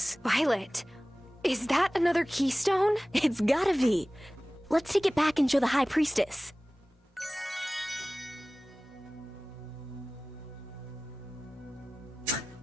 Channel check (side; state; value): both; normal; correlation 0.98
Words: Violet, is that another keystone? It's gotta be. Let's take it back and show the High Priestess.